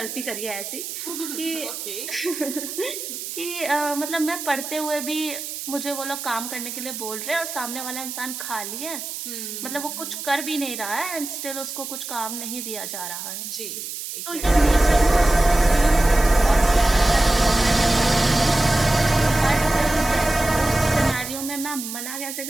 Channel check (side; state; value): right; noise; hiss, 8 dB below the sound